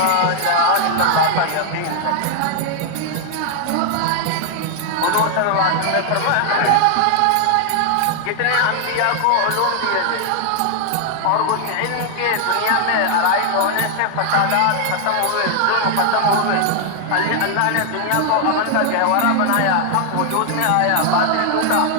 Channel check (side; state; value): both; different; correlation 0.00